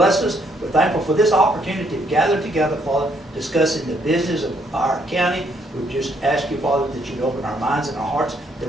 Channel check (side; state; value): both; normal; correlation 0.71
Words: us. We're thankful for this opportunity to gather together, Father, discussing the business of our county. We just ask you, Father, that you'd open our minds and our hearts,